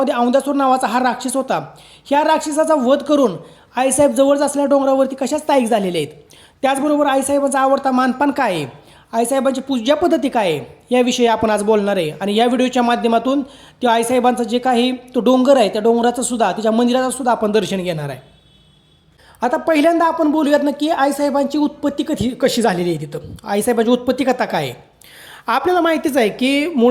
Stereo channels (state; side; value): identical; both; correlation 1.00